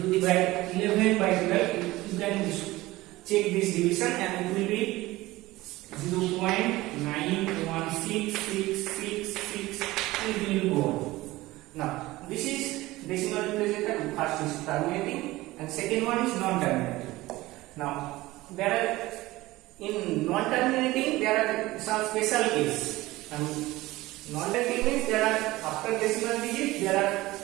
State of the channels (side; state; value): left; quieter; 18.7 dB